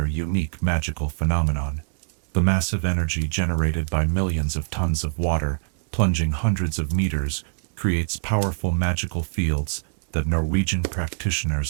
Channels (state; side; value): silent; left; digital silence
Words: unique magical phenomenon. The massive energy generated by millions of tons of water, plunging hundreds of meters, creates powerful magical fields that Norwegian